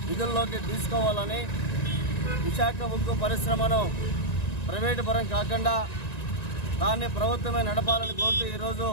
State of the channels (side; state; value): right; late; 1.9 ms